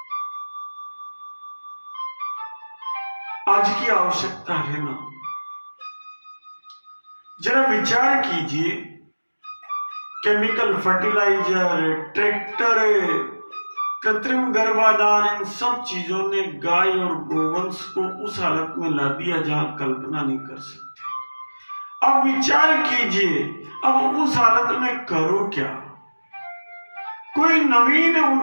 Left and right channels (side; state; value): both; inverted; correlation -1.00